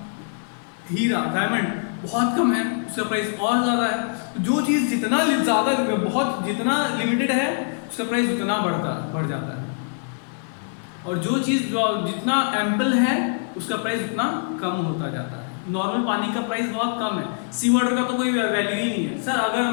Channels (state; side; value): silent; right; 63 dB below the other